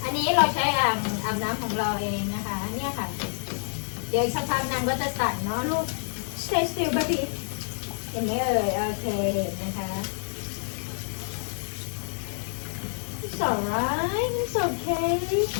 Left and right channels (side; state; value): right; silent; 60 dB below the other